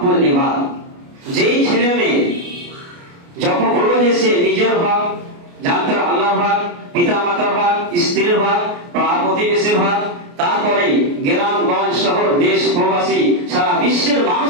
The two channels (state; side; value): late; left; 29 ms